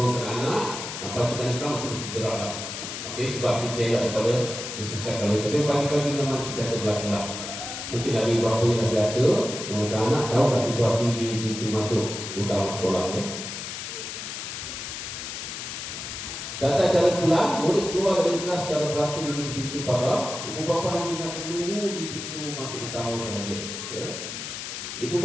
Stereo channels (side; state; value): left; noise; hiss, 7 dB below the sound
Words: anak. Pastikan selamat terus bergeraklah. Okay, sebab kita elak daripada disesatkan oleh. Tapi pagi-pagi memang sentiasa berlaku-laku. Mungkin ada ibu bapa yang dah biasa menghantar anak, tahu dah situasi di pintu masuk utama sekolah. Ya. Tata cara pulang, murid keluar dari kelas secara beratur menuju pintu pagar. Ibu bapa hanya nak menunggu di pintu masuk utama sahaja. Ya. Ibu